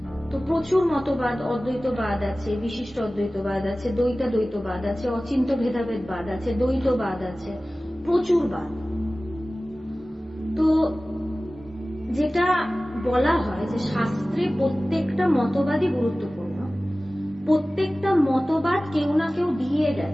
তো প্রচুর মতবাদ, অদ্বৈতবাদ আছে, বিশিষ্ট অদ্বৈতবাদ আছে, দ্বৈতবাদ আছে, অচিন্ত ভেদাভেদবাদ আছে, দ্বৈতবাদ আছে, প্রচুর বাদ। তো যেটা বলা হয় যে শাস্ত্রে প্রত্যেকটা মতবাদই গুরুত্বপূর্ণ, প্রত্যেকটা মতবাদ কেউ না কেউ দিয়ে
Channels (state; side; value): normal; both; correlation 0.97